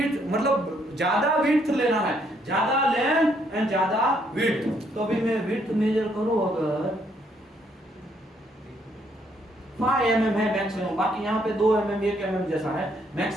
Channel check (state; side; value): normal; both; correlation 0.70